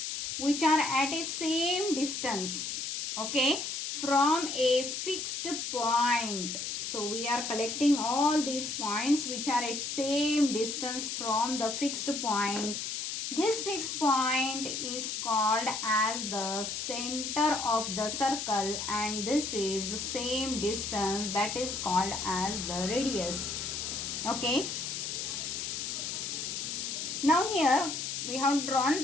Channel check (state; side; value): noise; left; hiss, 4 dB below the sound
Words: which are at a same distance, okay, from a fixed point. So we are collecting all these points which are at same distance from the fixed point. This fixed point is called as the center of the circle, and this is same distance, that is called as the radius. Okay. Now here we have